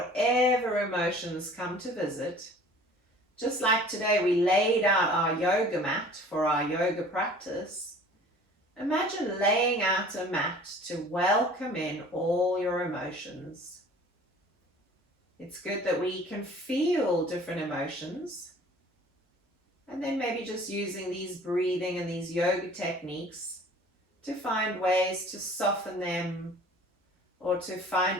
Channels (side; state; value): both; normal; correlation 0.48